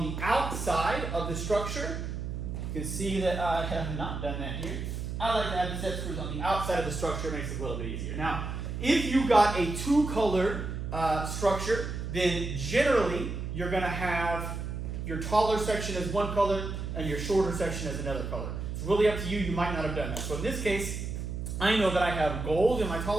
the outside of the structure. You can see that I have not done that here. I like to have the set screws on the outside of the structure. It makes it a little bit easier. Now, if you got a 2-color structure, then generally you're going to have your taller section as one color and your shorter section as another color. It's really up to you. You might not have done that. So in this case, I know that I have gold in my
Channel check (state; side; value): noise; right; hum, 5 dB below the sound